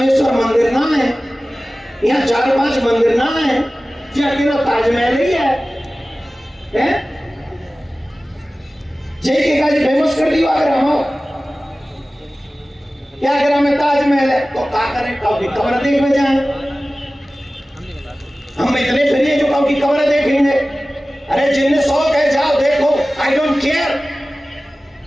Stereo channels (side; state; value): both; normal; correlation 0.97